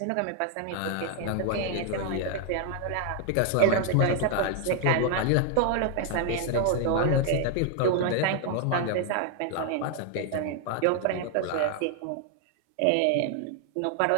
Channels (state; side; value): different; both; correlation 0.00